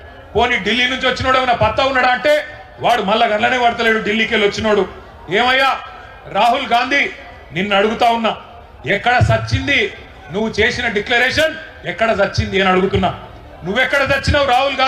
పోనీ ఢిల్లీ నుంచి వచ్చినోడు ఏమైనా పత్తా ఉన్నాడా అంటే వాడు మళ్ళా గంటలనే పడతలేడు. ఢిల్లీకి వెళ్ళి వచ్చినోడు ఏమయ్యా రాహుల్ గాంధీ నిన్ను అడుగుతా ఉన్నా, ఎక్కడ సచ్చింది నువ్వు చేసిన డిక్లరేషన్, ఎక్కడ సచ్చింది అని అడుగుతున్నా. నువ్వెక్కడ చచ్చినావు రాహుల్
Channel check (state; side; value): identical; both; correlation 1.00